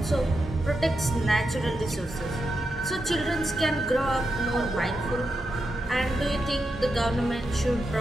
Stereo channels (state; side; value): normal; both; correlation 0.87